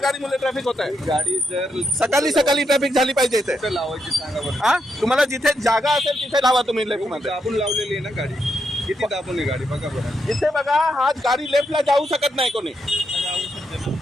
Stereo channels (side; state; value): both; normal; correlation 0.81